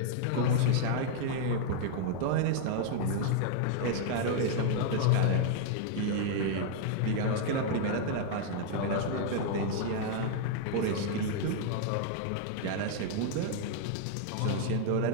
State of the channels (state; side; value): different; both; correlation -0.01